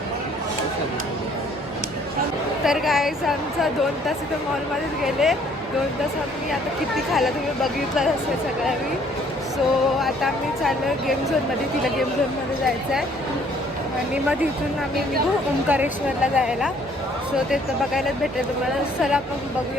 तर गाईज आमचा 2 तास इथं मॉलमध्येच गेले. 2 तास आम्ही आता किती खायला तुम्ही बघितलं असेल सगळ्या मी. सो आता आम्ही चाललो गेम झोनमध्ये. तिला गेम झोनमध्ये जायचं आहे आणि मग तिथून आम्ही निघू ओंकारेश्वरला जायला. सो ते तर बघायलाच भेटेल तुम्हाला. चला आपण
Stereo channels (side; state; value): both; normal; correlation 0.61